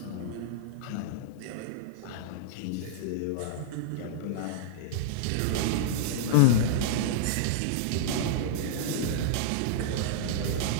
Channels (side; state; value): both; different; correlation -0.02